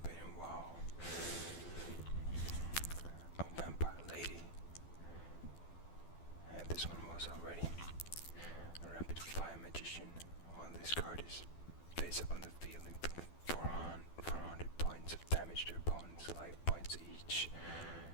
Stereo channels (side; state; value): right; late; 12 ms